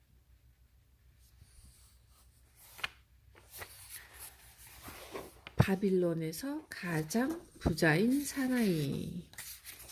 바빌론에서 가장 부자인 사나이.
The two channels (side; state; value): both; identical; correlation 1.00